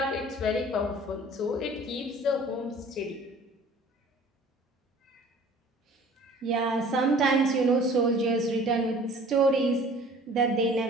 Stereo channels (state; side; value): normal; both; correlation 0.48